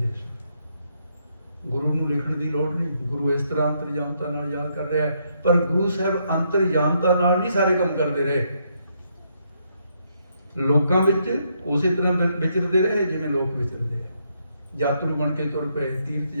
ਸੀ। ਗੁਰੂ ਨੂੰ ਲਿਖਣ ਦੀ ਲੋੜ ਨਹੀਂ, ਗੁਰੂ ਇਸ ਤਰ੍ਹਾਂ ਅੰਤਰਜਾਮਤਾ ਨਾਲ ਯਾਦ ਕਰ ਰਿਹਾ ਹੈ। ਪਰ ਗੁਰੂ ਸਾਹਿਬ ਅੰਤਰਜਾਮਤਾ ਨਾਲ ਨਹੀਂ ਸਾਰੇ ਕੰਮ ਕਰਦੇ ਰਹੇ, ਲੋਕਾਂ ਵਿੱਚ ਉਸੇ ਤਰ੍ਹਾਂ ਵਿਚਰਦੇ ਰਹੇ ਜਿਵੇਂ ਲੋਕ ਵਿਚਰਦੇ ਹੈ। ਯਾਤਰੂ ਬਣ ਕੇ ਤੁਰ ਪਏ, ਤੀਰਥ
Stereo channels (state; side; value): inverted; both; correlation -0.75